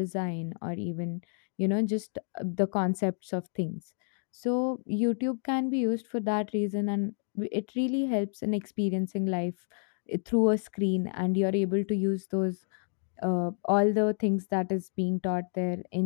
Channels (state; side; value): silent; right; digital silence